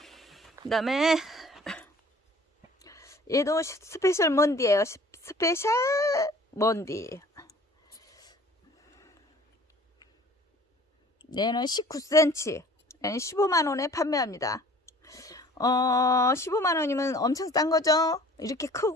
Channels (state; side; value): normal; both; correlation 0.50